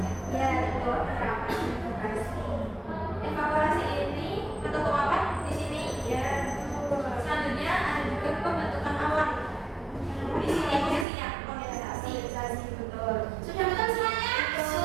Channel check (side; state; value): left; drops out; at 11.1 s